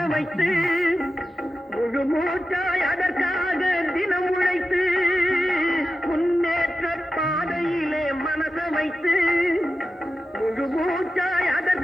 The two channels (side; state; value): both; normal; correlation 0.92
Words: வைத்து முழு மூச்சாய் அதற்காக தினம் உழைத்து. முன்னேற்ற பாதையிலே மனச வைத்து முழு மூச்சாய்